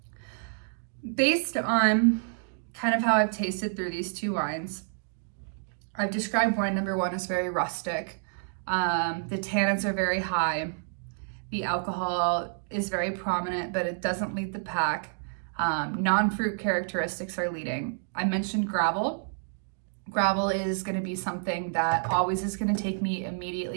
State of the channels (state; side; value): silent; left; digital silence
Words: based on kind of how I've tasted through these two wines, I've described wine number one as very rustic. The tannins are very high. The alcohol is very prominent, but it doesn't lead the pack. Non-fruit characteristics are leading. I mentioned gravel. Gravel is going to be something that always is going to take me